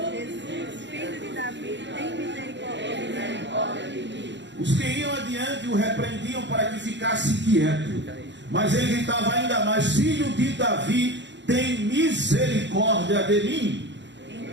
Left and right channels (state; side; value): late; left; 0.52 ms